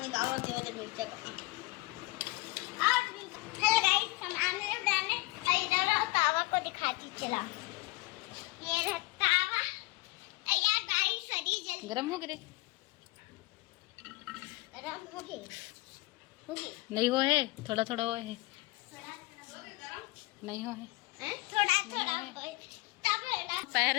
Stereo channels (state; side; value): quieter; right; 22.9 dB